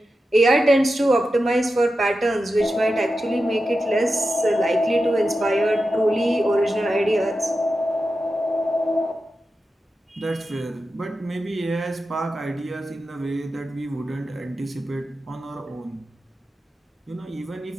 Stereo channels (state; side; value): normal; both; correlation 0.91